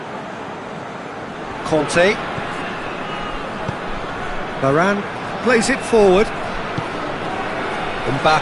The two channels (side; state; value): both; identical; correlation 1.00